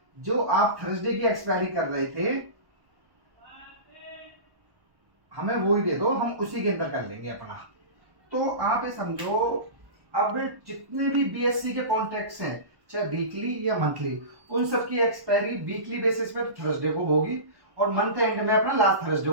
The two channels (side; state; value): left; late; 1.1 ms